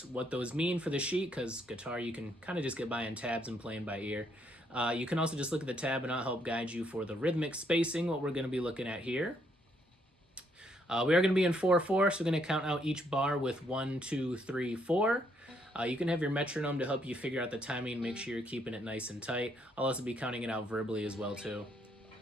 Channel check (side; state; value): both; normal; correlation 0.72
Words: what those mean for the sheet, because guitar you can kind of just get by in tabs and playing by ear, you can also just look at the tab and I'll help guide you for the rhythmic spacing, what we're going to be looking at here. We are going to be in 4/4, so we're going to count out each bar with 1, 2, 3, 4. You can have your metronome to help you figure out the timing and make sure you're keeping it nice and tight. I'll also be counting it out verbally as well too.